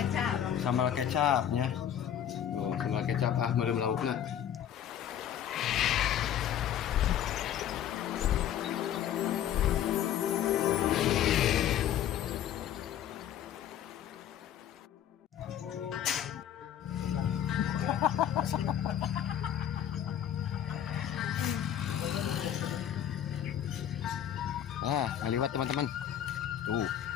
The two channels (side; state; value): right; quieter; 10.2 dB